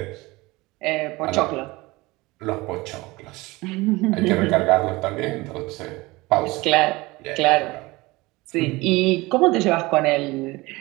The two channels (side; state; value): left; quieter; 21.7 dB